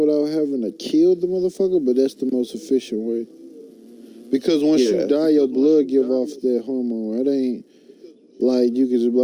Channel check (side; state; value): both; identical; correlation 1.00